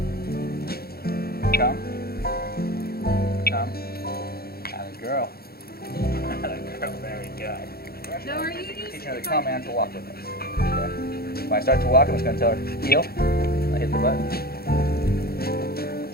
Come. Come. Atta girl. Atta girl, very good. No, are you used Teaching her to come and to walk with us. Okay. When I start to walk, I'm just going to tell her, heel. I hit the button.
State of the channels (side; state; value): right; late; 0.45 ms